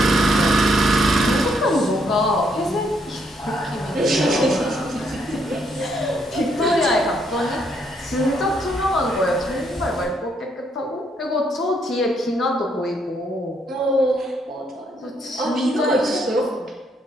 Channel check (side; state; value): both; normal; correlation 0.73